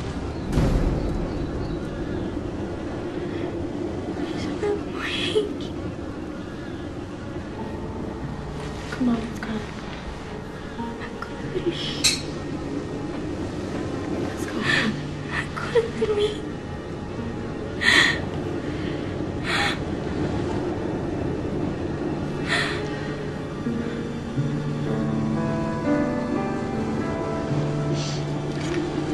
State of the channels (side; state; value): both; identical; correlation 1.00